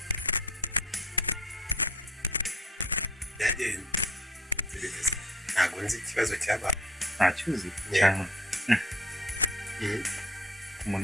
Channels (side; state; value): both; normal; correlation 0.51